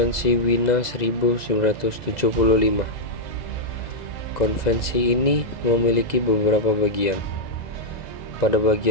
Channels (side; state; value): right; late; 2.0 ms